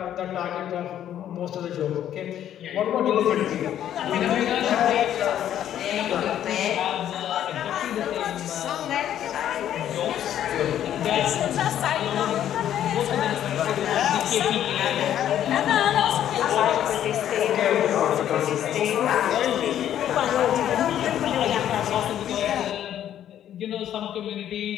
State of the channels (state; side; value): quieter; right; 10.9 dB